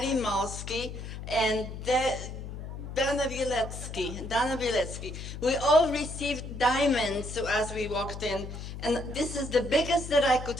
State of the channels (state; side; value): noise; left; hum, 9 dB below the sound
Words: Malski, and Dana Bielecki. We all received diamonds as we walked in, and this is the biggest that I could